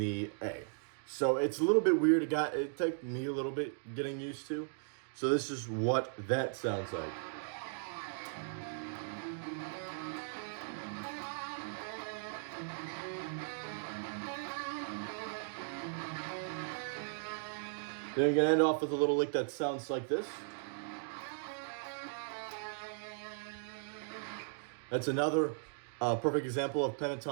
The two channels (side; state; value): left; silent; digital silence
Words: A. So it's a little bit weird. It took me a little bit getting used to. So this is what that sounds like. Then you're gonna end off with a little lick that sounds like this. That's another perfect example of